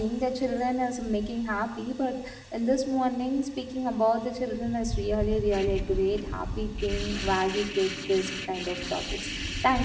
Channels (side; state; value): both; identical; correlation 1.00